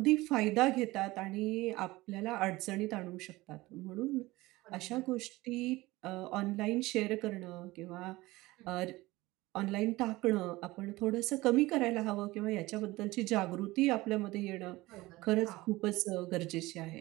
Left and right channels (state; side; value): quieter; left; 19.7 dB